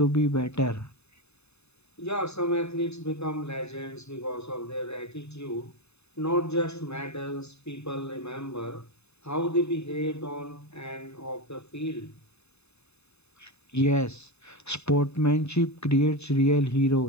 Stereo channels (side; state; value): right; late; 0.80 ms